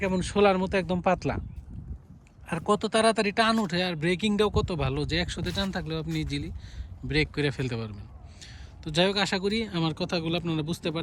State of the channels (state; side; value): identical; both; correlation 1.00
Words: কেমন শোলার মতো একদম পাতলা, আর কত তাড়াতাড়ি টান উঠে, আর ব্রেকিংটাও কত ভালো যে 100-তে টান থাকলেও আপনি ইজিলি ব্রেক করে ফেলতে পারবেন। তো যাই হোক, আশা করি আমার কথাগুলো আপনারা বুঝতে